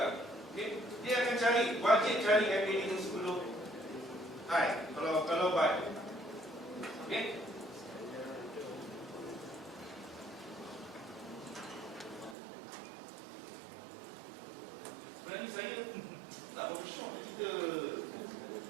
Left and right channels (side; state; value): left; drops out; at 12.4 s